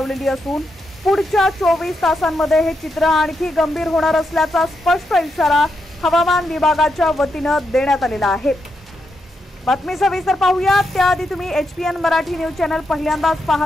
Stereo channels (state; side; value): normal; both; correlation 0.83